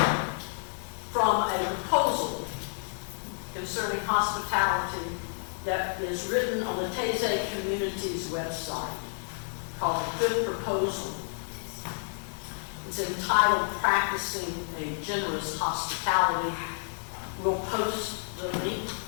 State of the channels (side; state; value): right; silent; digital silence